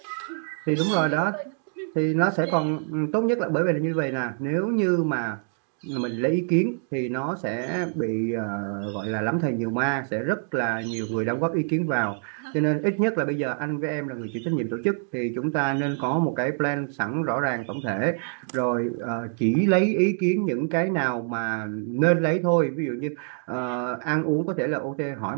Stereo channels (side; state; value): left; silent; digital silence